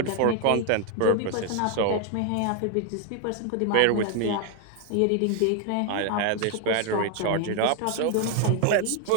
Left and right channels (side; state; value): both; different; correlation 0.00